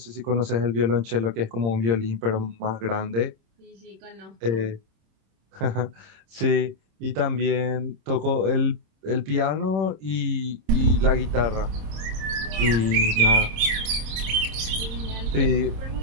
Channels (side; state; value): left; late; 26 ms